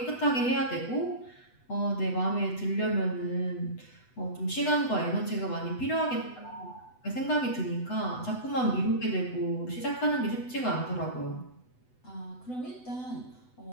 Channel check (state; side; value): late; right; 8.0 ms